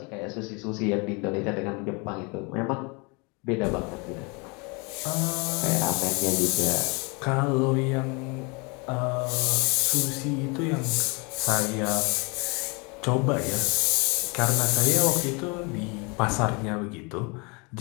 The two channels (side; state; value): right; quieter; 30.3 dB